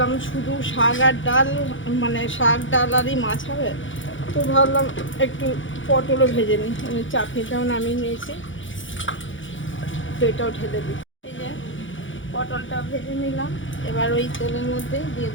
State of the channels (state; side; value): late; right; 0.56 ms